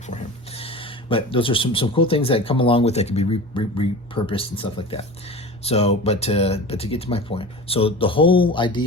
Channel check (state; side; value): normal; both; correlation 0.33